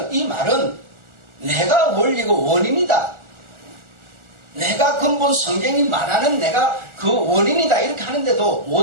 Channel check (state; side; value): late; left; 1.4 ms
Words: 이 말은 내가 원리고 원인이다. 내가 근본 성경이 말하는 내가 그 원인이다 이렇게 하는데도